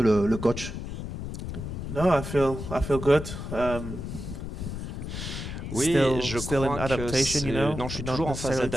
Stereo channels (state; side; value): noise; left; rumble, 6 dB below the sound